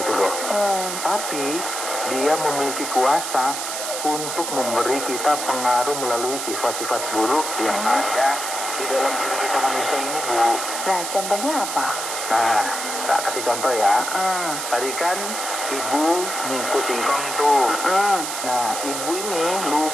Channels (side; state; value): right; noise; hiss, 4 dB below the sound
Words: loh. Tapi dia memiliki kuasa untuk memberi kita pengaruh melalui sifat-sifat buruk yang ada di dalam diri kita manusia ini Bu. Nah, contohnya apa? Nah, tak kasih contoh ya. Tadi kan Ibu ngikut singkong tuh. Nah, Ibu ini